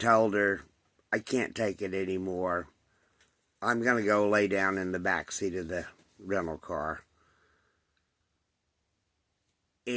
her, I can't take it anymore. I'm going to go lay down in the back seat of the rental car.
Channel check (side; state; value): both; identical; correlation 1.00